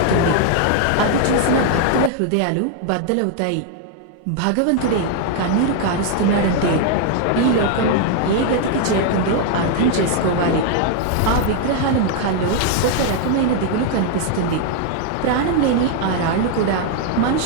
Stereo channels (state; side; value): different; both; correlation 0.00